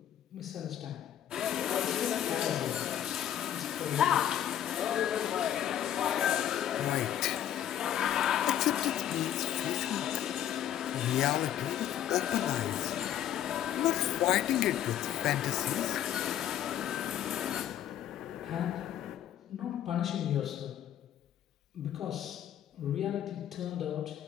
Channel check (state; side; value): quieter; right; 10.9 dB